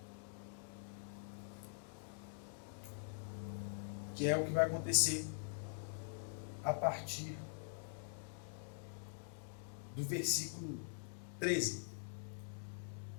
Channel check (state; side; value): silent; right; digital silence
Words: Que é o que vai acontecer a partir do versículo 13.